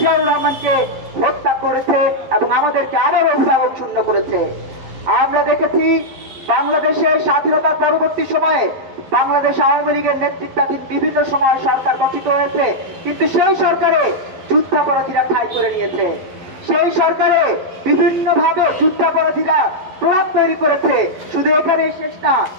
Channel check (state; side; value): late; left; 11 ms